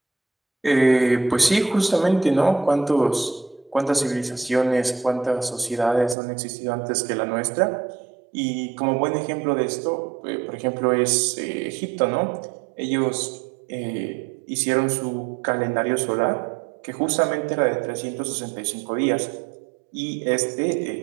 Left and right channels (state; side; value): drops out; left; at 6.2 s